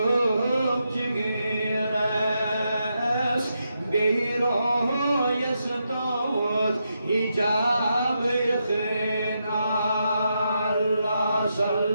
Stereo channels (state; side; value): inverted; both; correlation -0.83